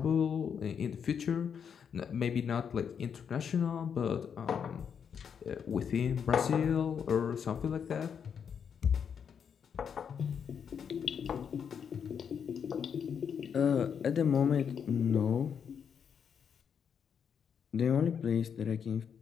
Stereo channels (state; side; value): quieter; right; 7.3 dB